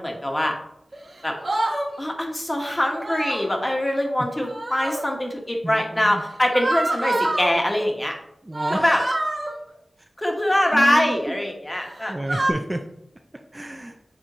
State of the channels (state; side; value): normal; both; correlation 0.98